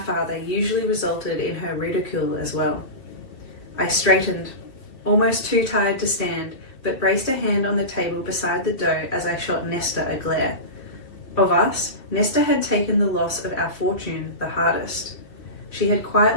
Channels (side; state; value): right; late; 2.5 ms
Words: usually resulted in her ridicule as well. I straightened, almost too tired to stand, but braced a hand on the table beside the dough as I shot Nesta a glare. Of us, Nesta had taken the loss of our fortune the hardest. She had